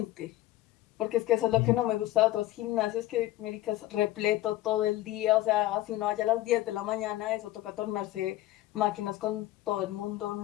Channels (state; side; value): quieter; right; 15.5 dB